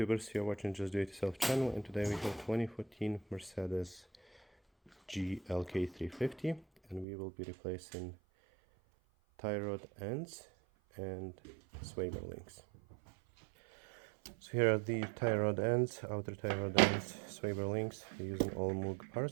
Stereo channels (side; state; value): left; drops out; at 7.1 s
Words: you're watching Just Do It Yourself channel, and today we have 2014 Mercedes GLK350 and we will be replacing tie rod ends and sway bar links. So here are the tie rod ends, outer tie rod ends, sway bar links using all Moog